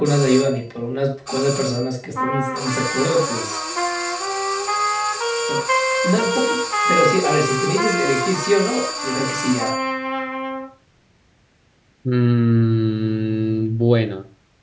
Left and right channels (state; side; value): identical; both; correlation 1.00